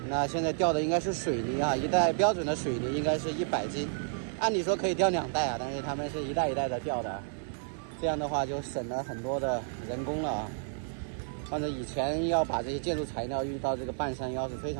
那现在吊的应该是水泥一袋标准的水泥应该是100斤，按理说可以吊2袋但是他们是一袋一袋的吊的，这样的话就省了很多的人工了反正以前要把这些建筑材料运到这个半山腰是非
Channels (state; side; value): silent; left; digital silence